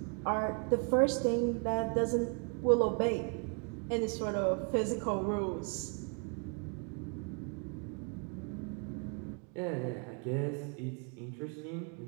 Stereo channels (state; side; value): quieter; left; 39.3 dB